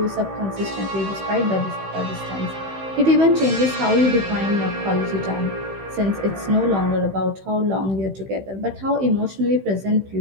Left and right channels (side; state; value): left; late; 15 ms